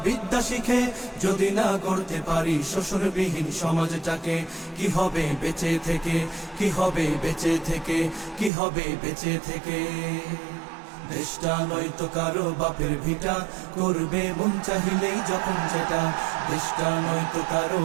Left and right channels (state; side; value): drops out; left; at 8.5 s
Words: বিদ্যা শিখে, যদি না গড়তে পারি শোষণবিহীন সমাজটাকে। কি হবে বেঁচে থেকে, কি হবে বেঁচে থেকে, কি হবে বেঁচে থেকে। দেশটা নয়তো কারো বাপের ভিটা, করবে মন চাহিলেই যখন যেটা। দেশটা নয়তো কারো